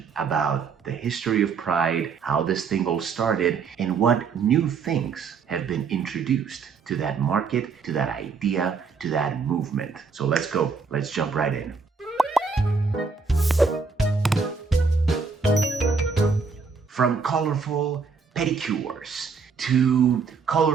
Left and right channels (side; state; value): left; quieter; 5.1 dB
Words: about the history of Pride, how this thing all started, and what new things have been introduced to that market, to that idea, to that movement. So let's go. Let's jump right in. From colorful pedicures to